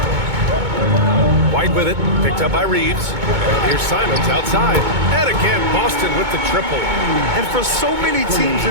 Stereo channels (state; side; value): late; left; 2.2 ms